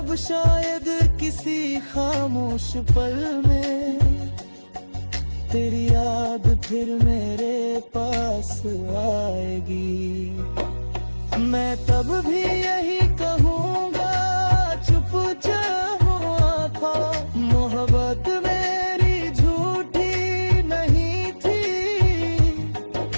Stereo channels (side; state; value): both; inverted; correlation -1.00